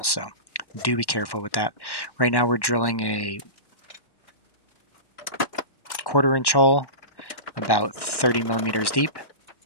So do be careful with that. Right now we're drilling a 1/4 inch hole, about 30mm deep.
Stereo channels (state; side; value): late; right; 1.1 ms